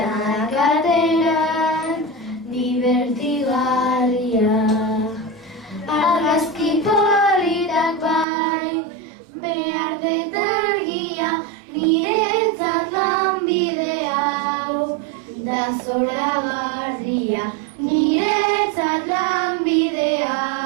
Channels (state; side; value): drops out; left; at 8.2 s